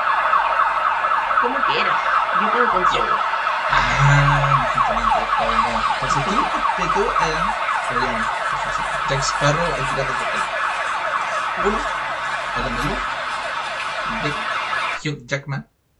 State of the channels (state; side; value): identical; both; correlation 1.00